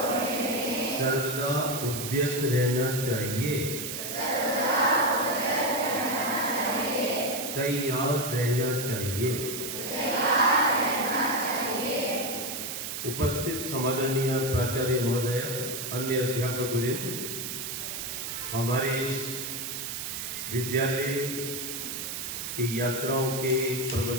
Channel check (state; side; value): noise; right; hiss, 5 dB below the sound